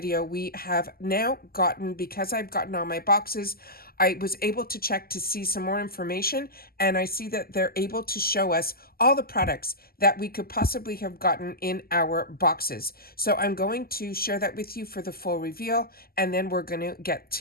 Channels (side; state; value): right; late; 0.44 ms